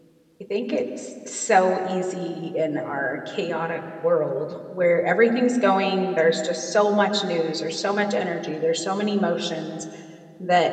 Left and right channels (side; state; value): both; identical; correlation 1.00